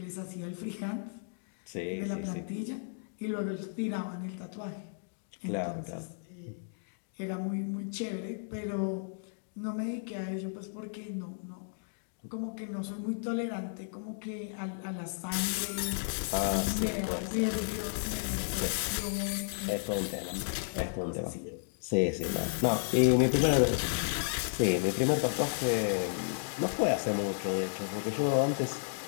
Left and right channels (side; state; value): right; silent; digital silence